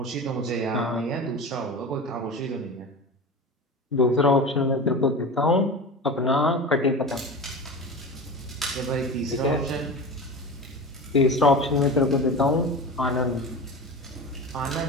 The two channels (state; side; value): normal; both; correlation 0.30